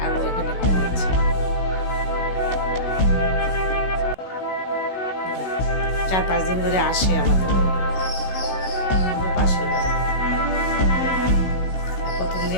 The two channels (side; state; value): right; late; 16 ms